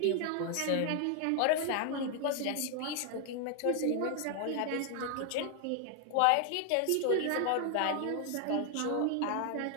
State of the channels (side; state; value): both; different; correlation 0.00